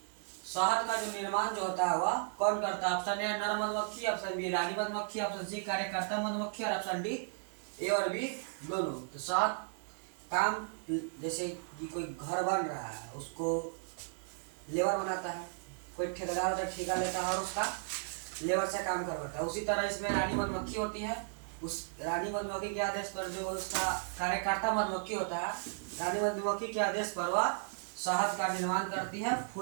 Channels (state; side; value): silent; left; digital silence